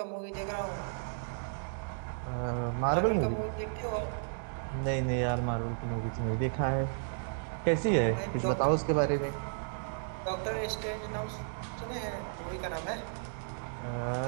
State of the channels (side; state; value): left; silent; digital silence